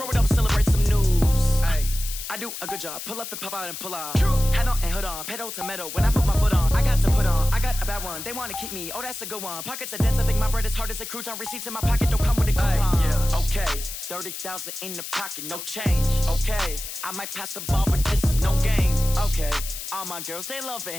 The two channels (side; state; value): left; noise; hiss, 8 dB below the sound